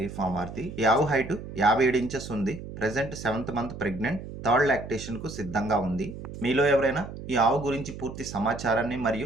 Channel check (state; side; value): noise; right; hum, 11 dB below the sound